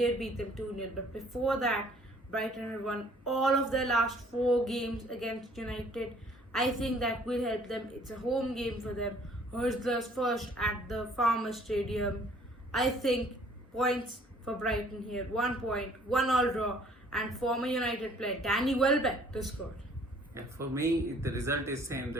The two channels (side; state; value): both; normal; correlation 0.57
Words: beat them 2-0. But before that, Brighton had won all of their last 4 games against United. I think that will help them. It's a home game for them. Hurslers first at the Farmers Stadium. I think points for Brighton here. 1 point, 1-1 draw, and former United player Danny Welbeck to score. Yeah, for me, the result is same, the